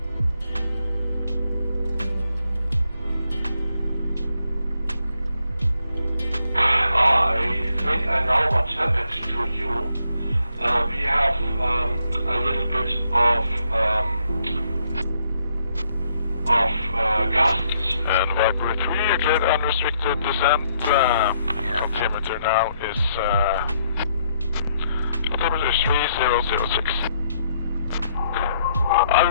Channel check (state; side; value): inverted; both; correlation -0.73